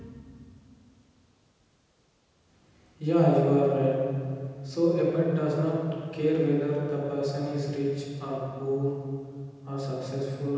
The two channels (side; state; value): both; identical; correlation 1.00